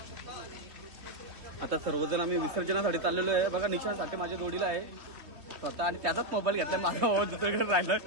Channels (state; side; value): late; left; 3.0 ms